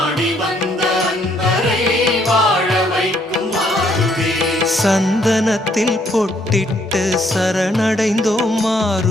வந்த அன்பரை வாழ வைக்கும் மாருதி சந்தனத்தில் பொட்டிட்டு சரணடைந்தோம்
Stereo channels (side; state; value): both; normal; correlation 0.68